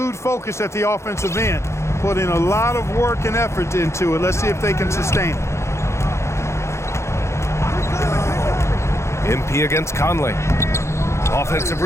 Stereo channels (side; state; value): right; late; 0.13 ms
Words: focus at the offensive end, putting a lot of work and effort into it. Let's see if they can sustain it. MP against Conley. Offensive